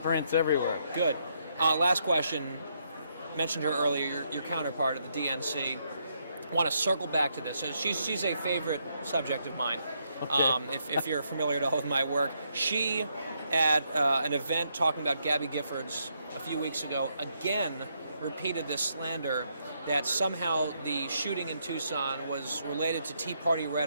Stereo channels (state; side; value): inverted; both; correlation -0.76